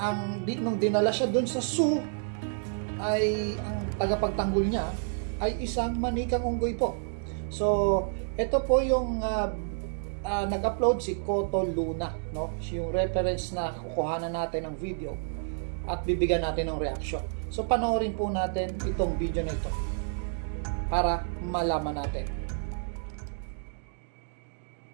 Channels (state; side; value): silent; left; digital silence